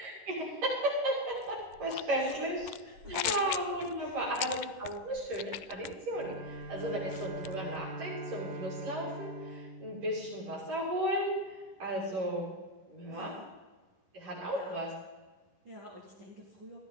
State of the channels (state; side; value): late; left; 10 ms